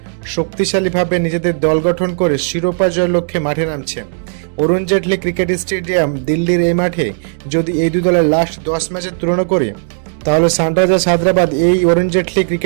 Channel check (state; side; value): silent; left; digital silence